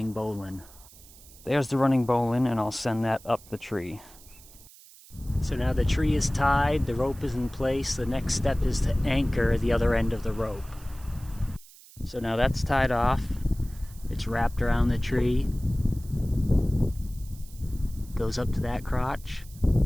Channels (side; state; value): right; noise; hiss, 22 dB below the sound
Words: bowline. There's the running bowline, and I'll send that up the tree. So now the tree is tied, the rope is in place, the next step is to anchor the other end of the rope. So now that's tied off, it's wrapped around the tree, goes up to that crotch,